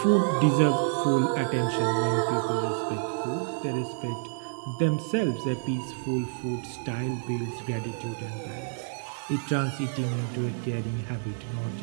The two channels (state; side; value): silent; left; digital silence